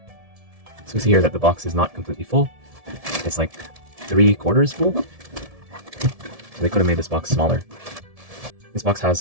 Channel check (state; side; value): late; left; 1.7 ms